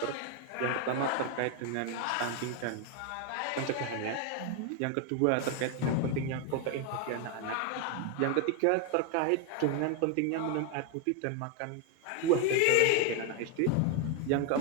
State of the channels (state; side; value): different; both; correlation 0.01